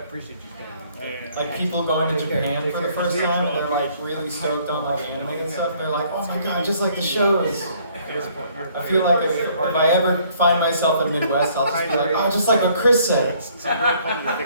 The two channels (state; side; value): inverted; both; correlation -0.62